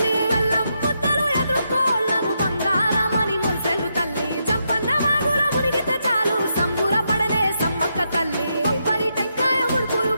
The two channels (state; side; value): inverted; both; correlation -0.82